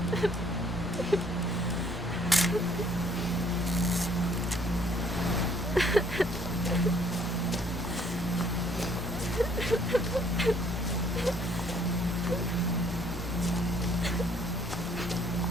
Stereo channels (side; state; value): both; normal; correlation 0.62